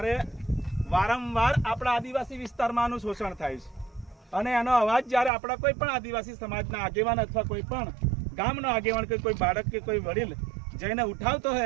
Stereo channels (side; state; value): left; drops out; at 5.3 s